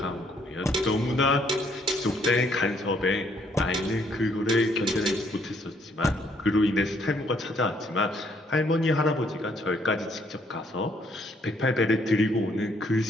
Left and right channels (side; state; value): both; normal; correlation 0.68